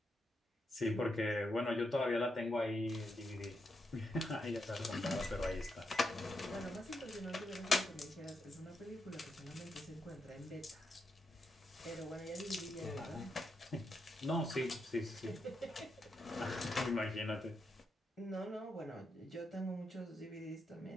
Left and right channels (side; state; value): both; normal; correlation 0.83